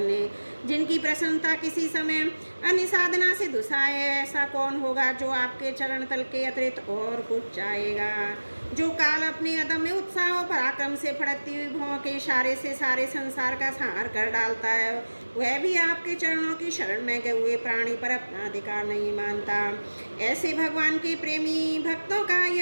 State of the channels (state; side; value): inverted; both; correlation -1.00